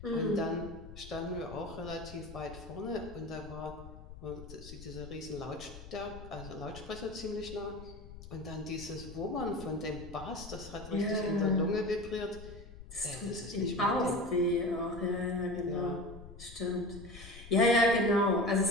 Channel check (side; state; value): left; noise; rumble, 15 dB below the sound